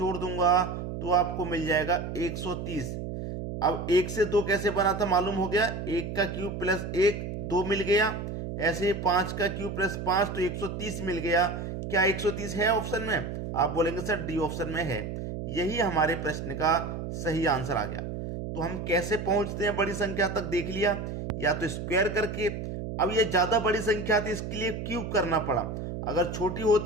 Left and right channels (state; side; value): noise; right; hum, 6 dB below the sound